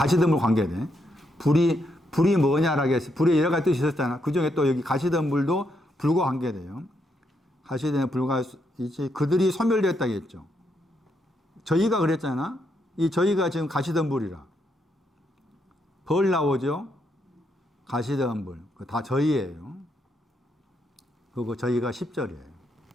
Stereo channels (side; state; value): both; normal; correlation 0.78